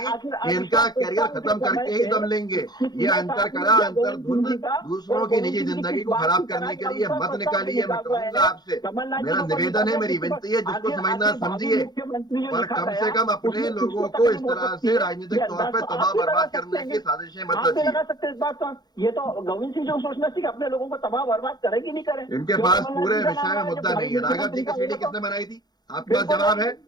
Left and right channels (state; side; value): late; right; 0.20 ms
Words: इनका कैरियर खत्म करके ही दम लेंगे। ये अंतर करा, अंतर धुंध दूसरों की निजी जिंदगी को खराब करने के लिए मत निकालिए। मैं कहूंगा आपसे, मेरा निवेदन है, मेरी विनती है, जिसको समझना समझिए, पर कम से कम अपने लोगों को इस तरह से राजनीतिक तौर पर तबाह बर्बाद करने की साजिशें मत रचिए। लगा सकते हैं इस बात का, ये तो गोविंद सिंह जो सोचना चाहिए अपने लोगों को तबाह बर्बाद करेगी नहीं करें। इनके पास पूरे विषय में मुद्दा नहीं है। राघव जी की सीडी किसने बनाई थी? आपके पास जवाब है?